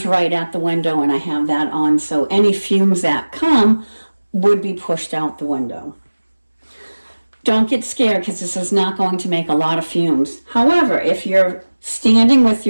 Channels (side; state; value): both; inverted; correlation -1.00